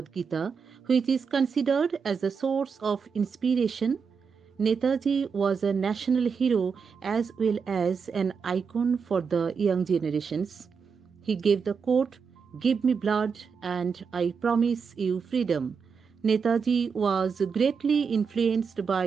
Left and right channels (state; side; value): quieter; left; 5.8 dB